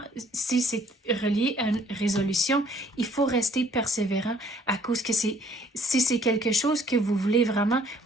si c'est relié à une résolution, il faut rester persévérant à cause que si c'est quelque chose que vous voulez vraiment,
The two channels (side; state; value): both; normal; correlation 0.61